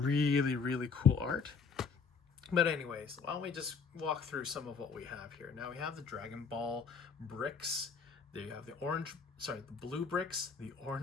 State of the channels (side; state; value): right; quieter; 5.5 dB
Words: cool art. But anyways, why don't we just walk through some of what we have here. Now we have the Dragon Ball bricks. There you have the blue bricks, the